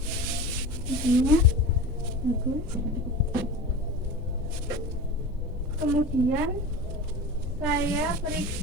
Hidungnya bagus. Kemudian saya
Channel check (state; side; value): normal; both; correlation 0.32